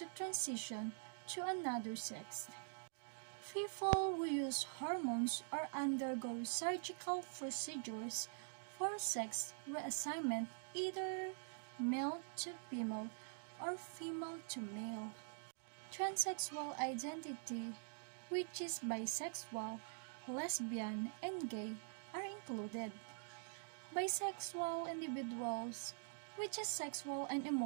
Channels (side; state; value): left; silent; digital silence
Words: transition to another sex. People who use hormones or undergo surgical procedures for sex reassignment, either male to female or female to male. Transsexual identity, which is bisexual, lesbian, and gay, are included. Bisexual individuals, which is sexual and